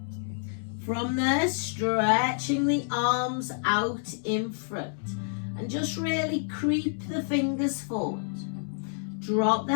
From there, stretching the arms out in front. And just really creep the fingers forward. Drop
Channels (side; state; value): right; silent; digital silence